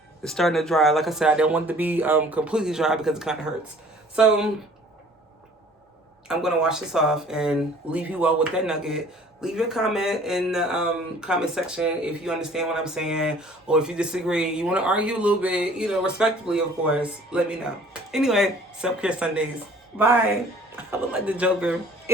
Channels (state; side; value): normal; both; correlation 0.53